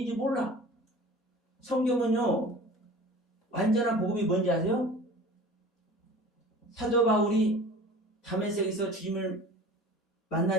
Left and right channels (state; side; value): normal; both; correlation 0.42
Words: 몰라. 성경은요, 완전한 복음이 뭔지 아세요? 사도 바울이 다메섹에서 주님을